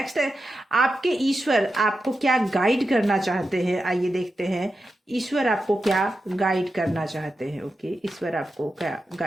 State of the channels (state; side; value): normal; both; correlation 0.90